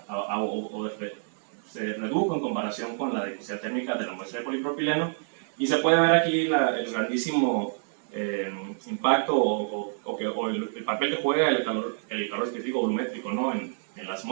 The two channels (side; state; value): left; silent; digital silence